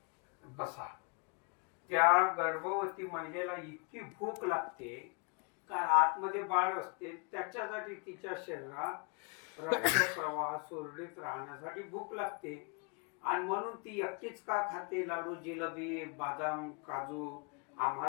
बसा. त्या गर्भवती महिलेला इतकी भूक लागते कारण आतमध्ये बाळ असते, त्याच्यासाठी तिच्या शरीरात रक्त प्रवाह सुरळीत राहण्यासाठी भूक लागते. आणि म्हणून ती एकटीच का खाते लाडू, जिलेबी, बदाम, काजू?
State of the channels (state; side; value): quieter; right; 35.1 dB